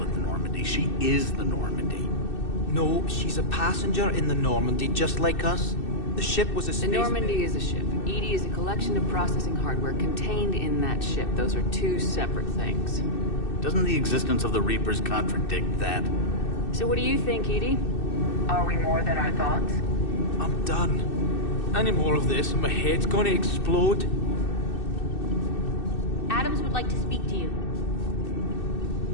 the Normandy, she is the Normandy. No, she's a passenger in the Normandy, just like us. The ship was a space... The Normandy is a ship. Edie is a collection of processing hardware contained in that ship. Those are two separate things. Doesn't the existence of the Reapers contradict that? So what do you think, Edie? Are we more than our thoughts? I'm done. Any more of this and my head's gonna explode. Adams would like to speak to you.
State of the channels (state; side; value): late; right; 2.6 ms